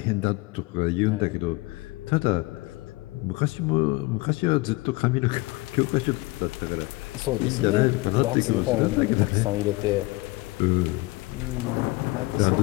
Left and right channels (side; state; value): right; quieter; 22.8 dB